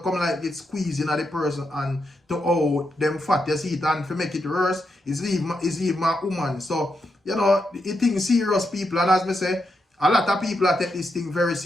come like it squeezing at the person and to how them fat, you see it, and to make it worse, is even a woman. So, you know, it thing serious, people, and as me say, a lot of people take this thing very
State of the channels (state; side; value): normal; both; correlation 0.83